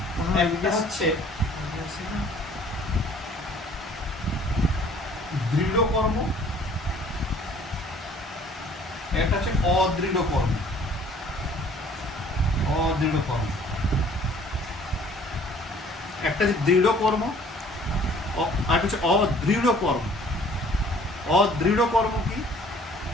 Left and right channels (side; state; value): both; normal; correlation 0.54